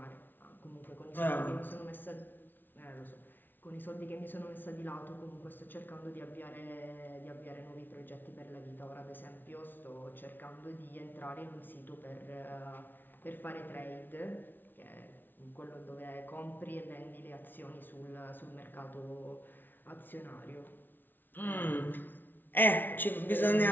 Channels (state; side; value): late; right; 0.092 ms